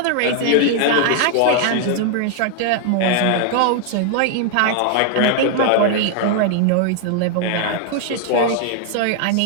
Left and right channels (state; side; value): different; both; correlation 0.00